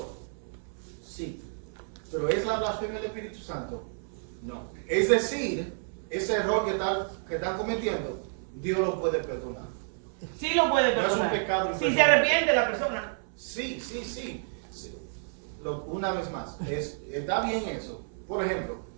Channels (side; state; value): left; silent; 58 dB below the other